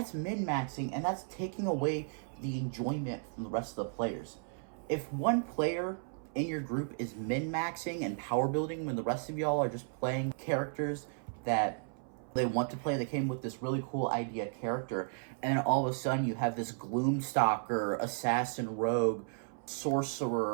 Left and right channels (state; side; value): silent; left; 55 dB below the other